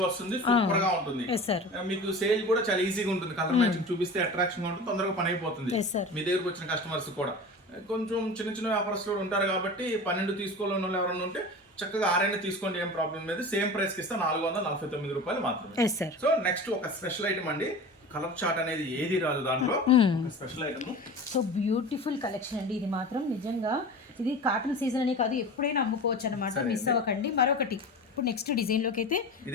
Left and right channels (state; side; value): normal; both; correlation 0.34